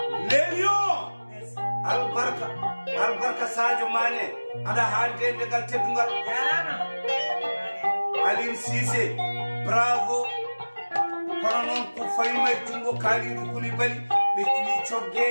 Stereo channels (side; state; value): both; inverted; correlation -1.00